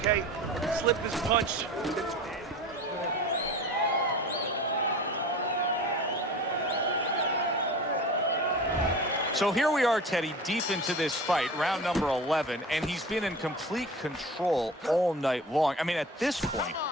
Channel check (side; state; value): both; normal; correlation 0.36